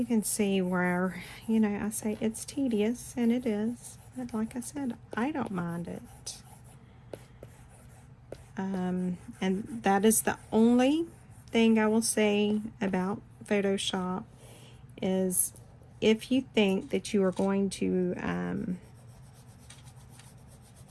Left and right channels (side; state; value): both; identical; correlation 1.00